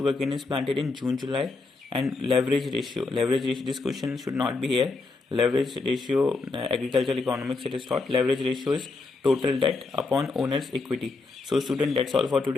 is planted in June, July. And leverage ratio. This question should not be here. Leverage ratio, agricultural economics it is taught. Leverage ratio is total debt upon owner's equity. So student, that's all for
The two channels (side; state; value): right; quieter; 3.8 dB